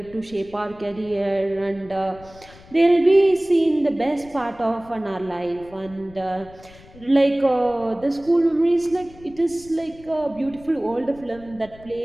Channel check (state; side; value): noise; left; rumble, 22 dB below the sound